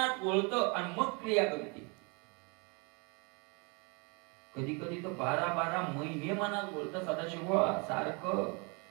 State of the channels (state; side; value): quieter; left; 31.3 dB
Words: वळतं आणि मग क्रिया करते. कधी कधी तर 12-12 महिने मनात वळतं. सदाशिव सारखं